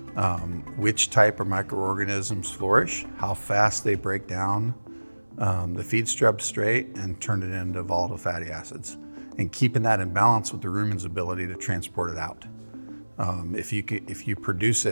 which type of microorganisms flourish, how fast they break down the feed substrate and turn it into volatile fatty acids, and keeping that in balance with the rumen's ability to transport it out. If you produce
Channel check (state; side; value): inverted; both; correlation -1.00